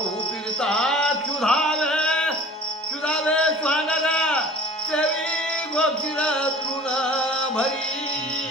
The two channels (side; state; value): both; normal; correlation 0.44